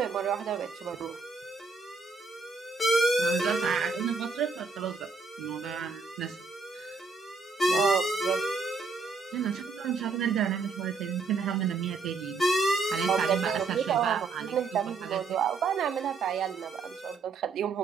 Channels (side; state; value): left; quieter; 4.4 dB